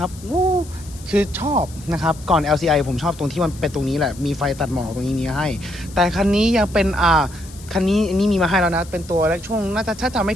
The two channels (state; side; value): noise; left; hiss, 20 dB below the sound